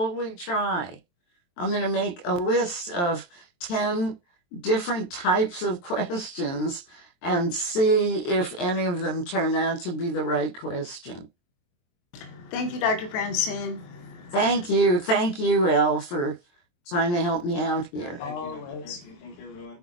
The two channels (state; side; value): late; right; 23 ms